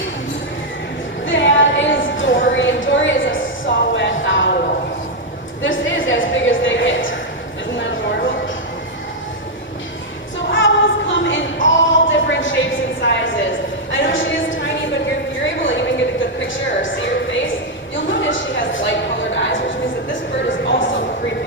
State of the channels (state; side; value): normal; both; correlation -0.01